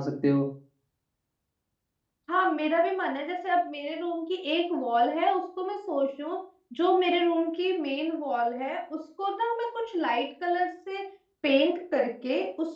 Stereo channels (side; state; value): both; identical; correlation 1.00